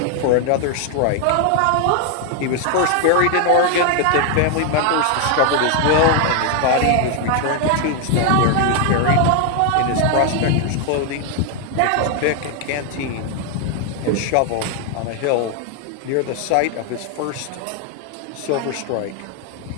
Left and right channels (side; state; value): both; different; correlation 0.00